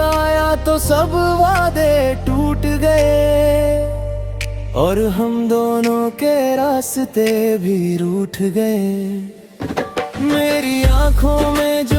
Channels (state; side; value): identical; both; correlation 1.00